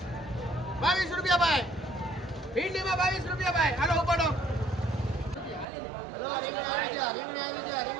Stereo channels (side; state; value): left; drops out; at 5.7 s